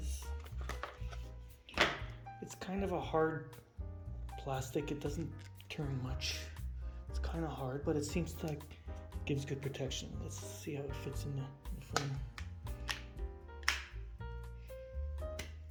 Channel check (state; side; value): identical; both; correlation 1.00